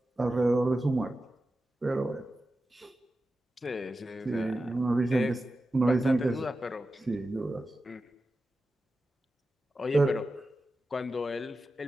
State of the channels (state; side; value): normal; both; correlation 0.92